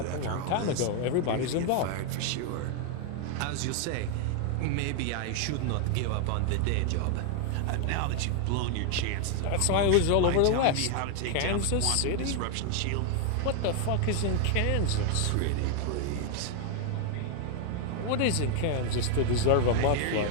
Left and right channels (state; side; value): different; both; correlation 0.00